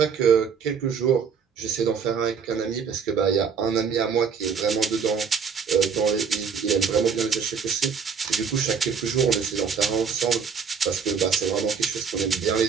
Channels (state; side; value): quieter; left; 6.3 dB